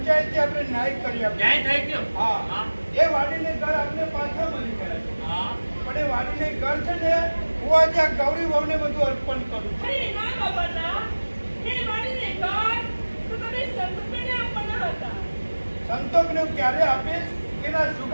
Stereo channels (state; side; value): inverted; both; correlation -1.00